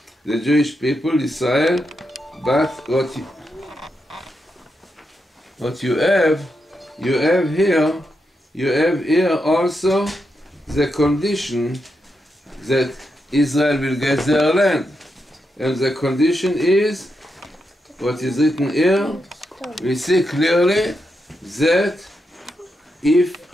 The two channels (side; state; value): both; normal; correlation 0.85